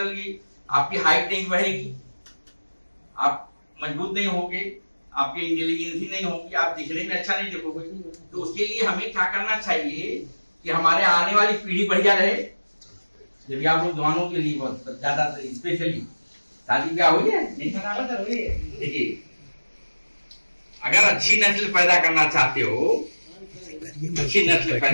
गई। आपकी हाइट नहीं बढ़ेगी, आप मजबूत नहीं होगे, आपकी इंटेलिजेंसी नहीं होगी, आप दिखने में अच्छा नहीं दिखोगे। तो उसके लिए हमें क्या करना चाहिए कि हमारे आने वाली पीढ़ी बढ़िया रहे। जब आप लोग जवानों के लिए बहुत ज्यादा स्पेशली शादी ब्याह हुई है, नहीं देखिए, अगर अच्छी नस्ल पैदा करना चाहते हो, अच्छी नस्ल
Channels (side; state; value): both; inverted; correlation -1.00